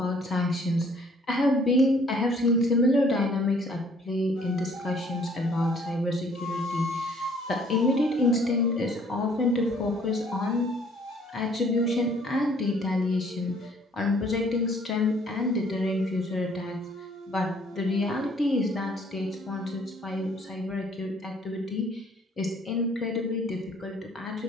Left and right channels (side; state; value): both; normal; correlation 0.60